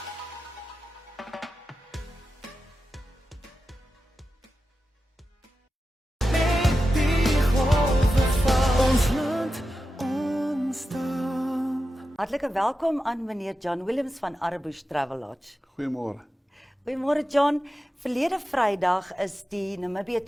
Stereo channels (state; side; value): normal; both; correlation 0.91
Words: Hartlike welkom aan meneer John Williams van Arebbusch Travel Lodge. Goeiemôre. Goeiemôre John. Verlede Vrydag is die Namibië